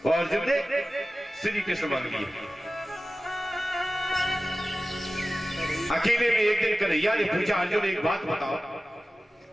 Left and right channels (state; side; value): normal; both; correlation 0.96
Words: और अर्जुन ने श्री कृष्ण मांग लिए। अकेले में एक दिन कन्हैया ने पूछा, अर्जुन एक बात बताओ,